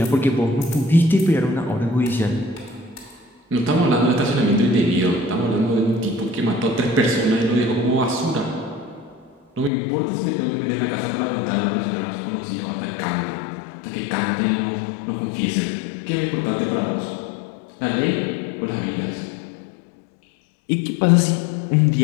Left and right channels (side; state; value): right; drops out; at 9.7 s